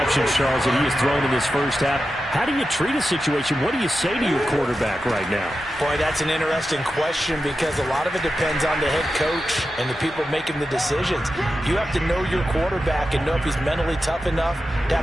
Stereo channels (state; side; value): normal; both; correlation 0.91